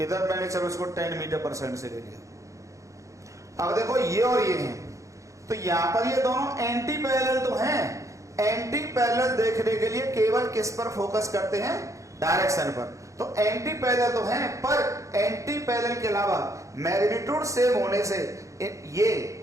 मैंने चलो इसको 10 मीटर पर सेकंड से ले लिया। अब देखो ये और ये हैं, तो यहां पर ये दोनों एंटी पैरेलल तो हैं। एंटी पैरेलल देखने के लिए केवल किस पर फोकस करते हैं, डायरेक्शन पर। तो एंटी पैरेलल तो हैं, पर एंटी पैरेलल के अलावा मैग्नीट्यूड सेम होने से ये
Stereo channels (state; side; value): late; left; 0.15 ms